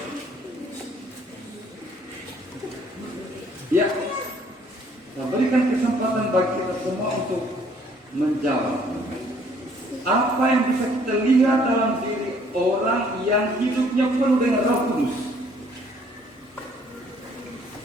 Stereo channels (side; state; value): both; normal; correlation 0.61